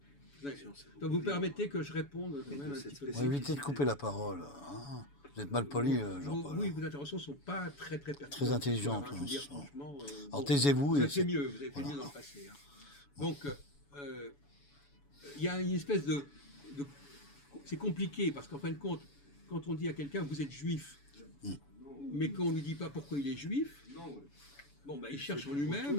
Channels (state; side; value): late; right; 7.0 ms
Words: Donc, vous permettez que je réponde quand Et de même un cette petit peu. On va éviter de couper la parole. Hein. Vous êtes mal poli, Jean-Paul. Oui, vos interventions ne sont pas très pertinentes. Très intelligentes, Je veux dire, hein, franchement, Alors bon, taisez-vous. vous et avez fait c'est- mieux, vous avez fait Voilà. mieux dans le passé. Hein. Donc, il y a une espèce de c'est compliqué parce qu'en fin de compte, quand on dit à quelqu'un vous êtes juif, mais qu'on ne lui dit pas pourquoi il est juif, bon, ben, il cherche en